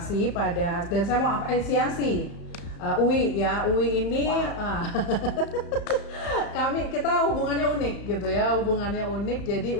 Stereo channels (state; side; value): late; right; 35 ms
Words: dan saya mau apresiasi UI ya, UI ini kita hubungannya unik gitu ya, jadi